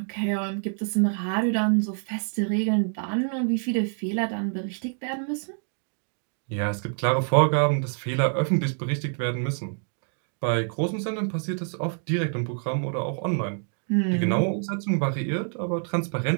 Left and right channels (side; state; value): left; silent; 56 dB below the other